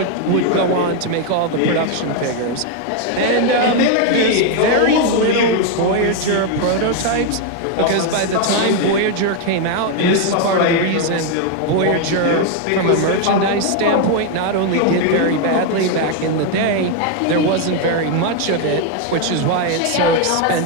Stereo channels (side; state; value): both; different; correlation 0.01